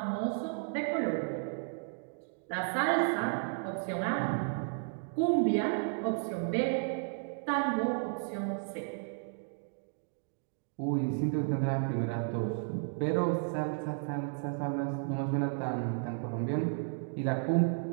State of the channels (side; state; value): left; silent; 55 dB below the other